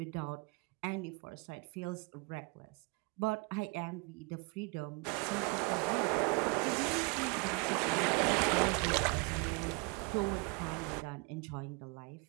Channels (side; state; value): left; quieter; 30.0 dB